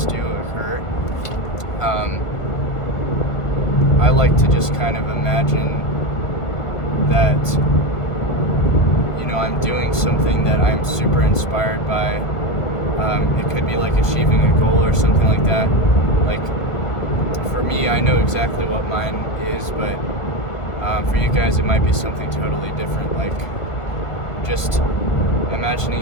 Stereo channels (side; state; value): right; late; 1.4 ms